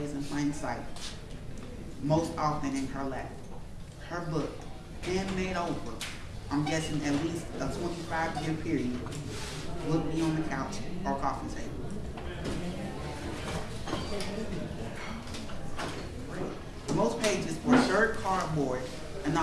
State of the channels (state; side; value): identical; both; correlation 1.00